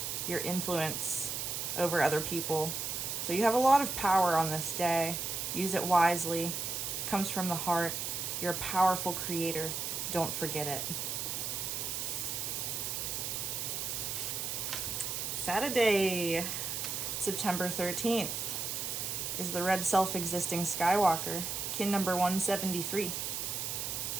your influence over other people. So you have a lot of power on this day. Use it wisely. It comes from the heart. You're a powerful creator. Don't forget it. Saturday, September 13th, is the red self-existing Skywalker, kin number 173.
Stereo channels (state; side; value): noise; right; hiss, 3 dB below the sound